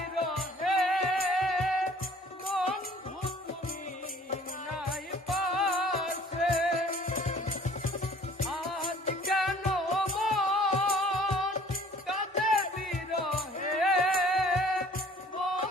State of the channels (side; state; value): both; normal; correlation 0.53